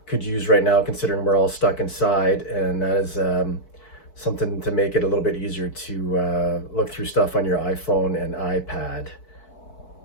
could use right now, considering we're all stuck inside, and that is something to make it a little bit easier to look through stuff on your iPhone and iPad.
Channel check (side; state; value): right; late; 4.5 ms